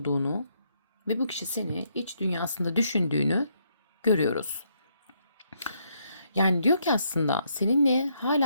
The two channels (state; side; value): inverted; both; correlation -0.74